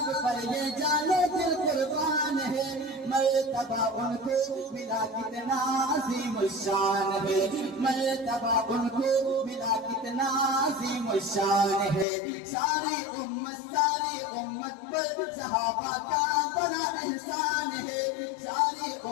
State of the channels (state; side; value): drops out; right; at 12.1 s